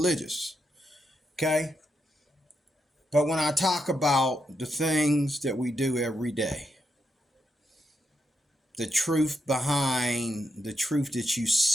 Okay? But when I talk about the things that we do every day, the truth behind the truth that you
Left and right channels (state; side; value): normal; both; correlation 0.82